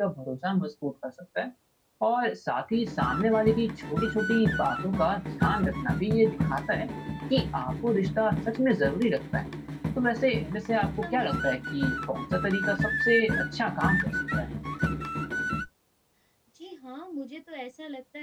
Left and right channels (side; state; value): both; identical; correlation 1.00